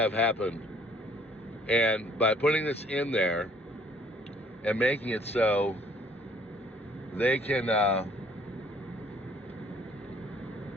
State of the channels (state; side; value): normal; both; correlation 0.60